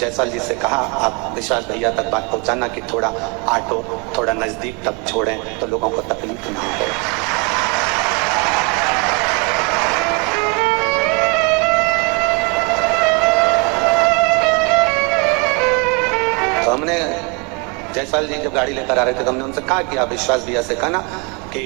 जी से कहा आप विश्वास भैया तक बात पहुंचाना कि थोड़ा ऑटो थोड़ा नजदीक तक छोड़ें तो लोगों को तकलीफ ना हो। तो हमने जायसवाल जी जब गाड़ी लेकर आ रहे थे तो हमने उनसे कहा कि आप विश्वास भैया से कहना कि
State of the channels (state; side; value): quieter; left; 32.3 dB